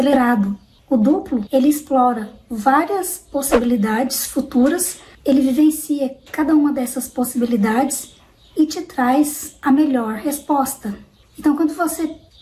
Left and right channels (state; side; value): identical; both; correlation 1.00